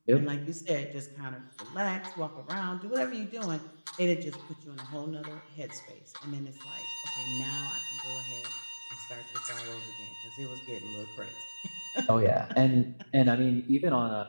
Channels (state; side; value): inverted; both; correlation -1.00